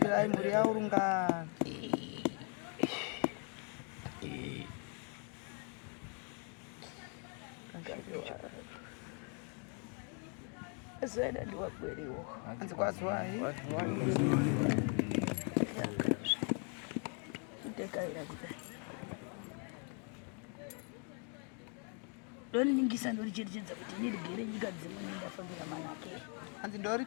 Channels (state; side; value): quieter; right; 39.2 dB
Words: mhuri yaurungana Zena ndiwakweriwo anzi kwazwai ndekaira kudai ndoningisa ndoricherechedza kuti ndirigere nyika dzimwe ndafambira manake. Hanzi